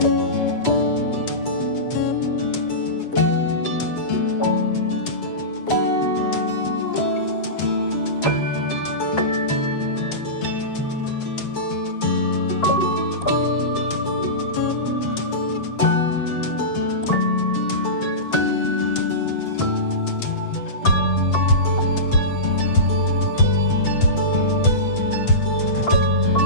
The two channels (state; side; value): late; right; 7.9 ms